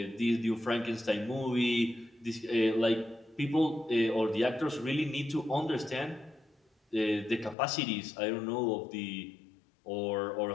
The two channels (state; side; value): drops out; right; at 7.6 s